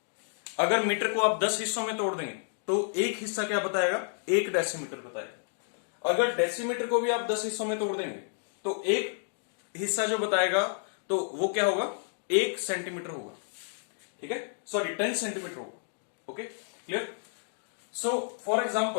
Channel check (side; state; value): right; silent; digital silence